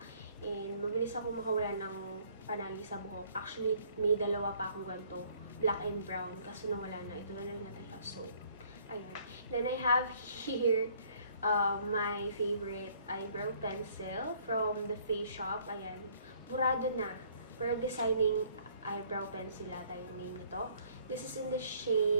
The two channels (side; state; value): both; inverted; correlation -0.60